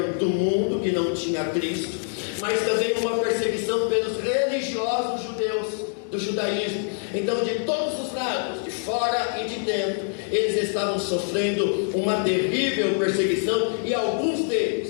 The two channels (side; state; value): right; silent; 62 dB below the other